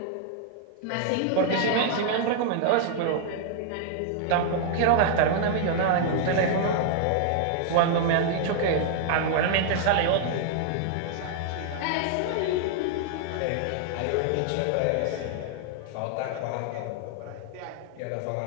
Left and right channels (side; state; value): both; different; correlation 0.00